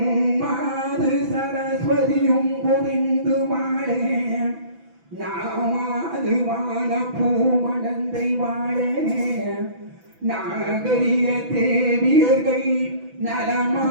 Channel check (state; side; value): late; left; 6.0 ms